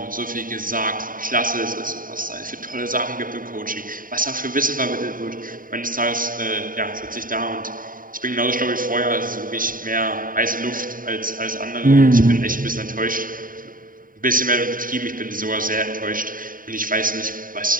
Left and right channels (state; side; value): late; left; 0.40 ms